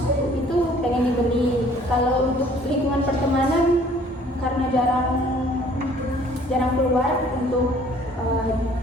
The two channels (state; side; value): normal; both; correlation 0.56